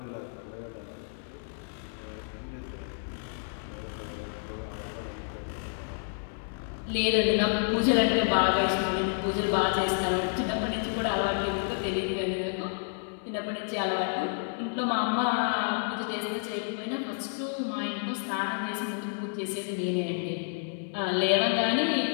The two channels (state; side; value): silent; right; 58 dB below the other